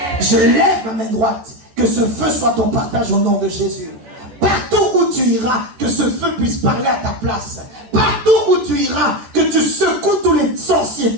Je lève ma main droite, que ce feu soit ton partage au nom de Jésus. Partout où tu iras, que ce feu puisse parler à ta place. Partout où tu iras, que tu secoues tous les sorciers,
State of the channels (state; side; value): late; left; 14 ms